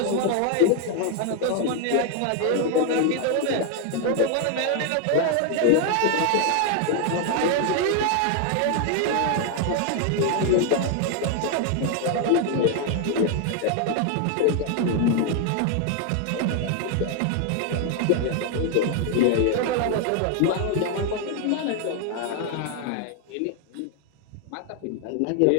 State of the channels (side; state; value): both; different; correlation 0.01